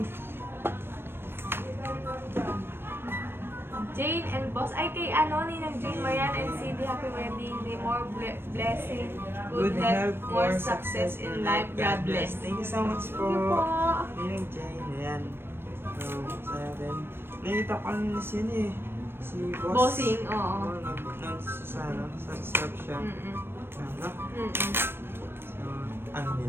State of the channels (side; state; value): left; late; 0.11 ms